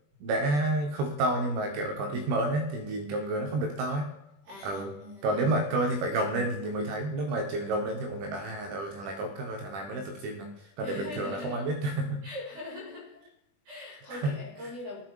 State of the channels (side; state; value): left; late; 20 ms